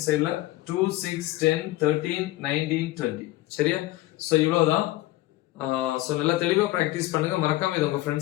2 6 10 13 19 20. சரியா? சோ இவ்வளவுதான். சோ நல்லா தெளிவா பிராக்டிஸ் பண்ணுங்க. மறக்காம இத உங்க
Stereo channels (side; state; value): right; quieter; 17.3 dB